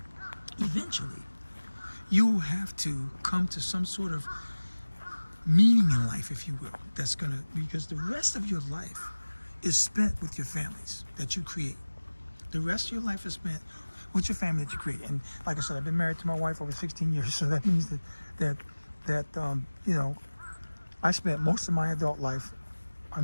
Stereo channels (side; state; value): both; inverted; correlation -1.00